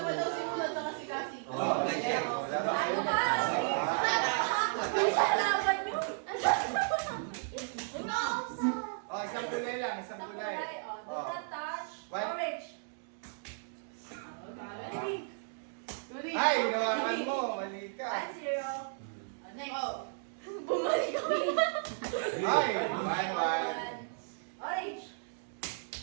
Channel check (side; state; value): left; silent; digital silence